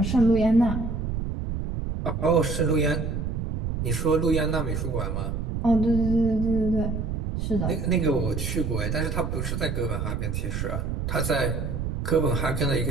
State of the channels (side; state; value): right; noise; rumble, 2 dB below the sound